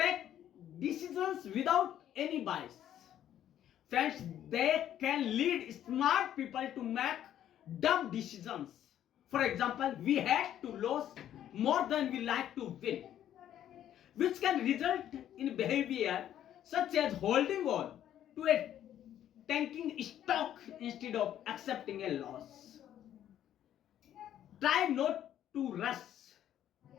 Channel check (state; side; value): quieter; right; 11.1 dB